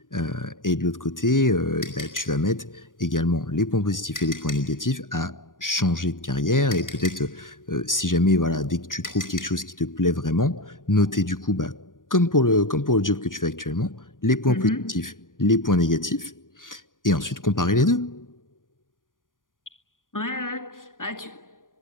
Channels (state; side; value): late; right; 0.89 ms